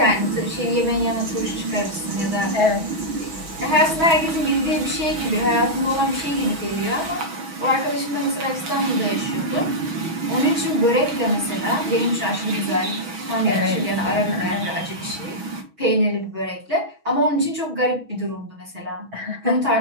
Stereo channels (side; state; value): left; late; 6.2 ms